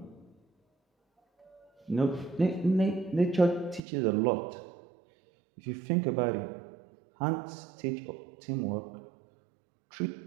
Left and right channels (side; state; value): left; drops out; at 3.8 s